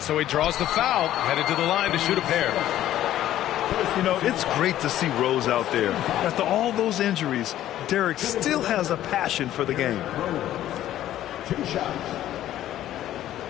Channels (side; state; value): right; quieter; 12.8 dB